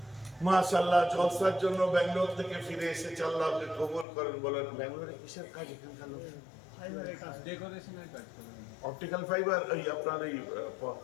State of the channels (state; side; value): drops out; right; at 4.0 s